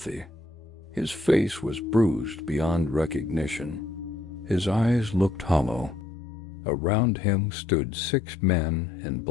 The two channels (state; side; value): drops out; right; at 6.1 s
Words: His face was bruised beyond recognition. His eyes looked hollow. Around him stood 6 men in